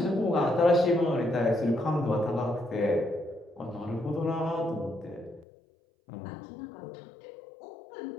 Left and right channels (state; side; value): drops out; right; at 5.5 s